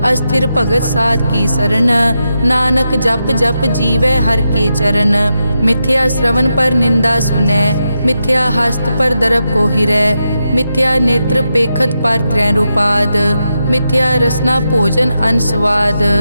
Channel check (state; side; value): inverted; both; correlation -0.86